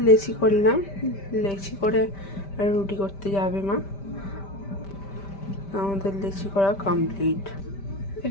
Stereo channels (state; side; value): late; right; 5.1 ms